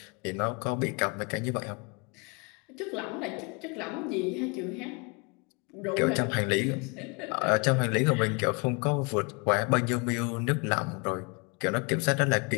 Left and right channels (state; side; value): quieter; right; 31.7 dB